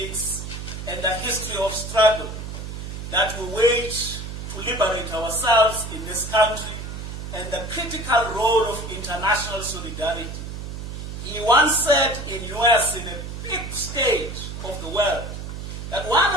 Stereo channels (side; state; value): right; noise; hum, 8 dB below the sound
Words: and the history of struggle that we wage to liberate ourselves in this country and the critical role of international solidarity. He once said in US, in a big stage of the world, that one